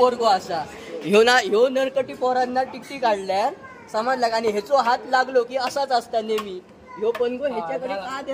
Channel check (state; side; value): identical; both; correlation 1.00